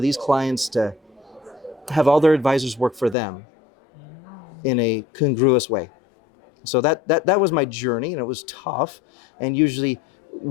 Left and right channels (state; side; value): drops out; right; at 3.2 s